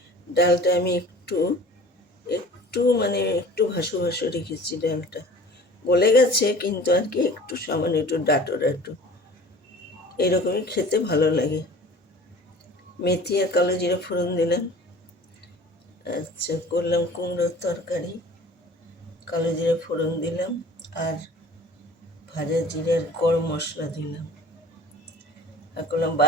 ডালটা আমি একটু একটু মানে একটু ভাসু ভাসু রেখেছি। ডালটা গলে গেছে কিন্তু আর কি একটু সামান্য একটু ডাঁটো ডাঁটো, এরকমই খেতে ভালো লাগে। মেথি আর কালো জিরা ফোড়ন দিলাম। আচ্ছা, করলাম কুমড়োর তরকারি, কালো জিরা ফোড়ন দিলাম আর ভাজা জিরার গরম মশলা দিলাম। আর করলাম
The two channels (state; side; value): normal; both; correlation 0.44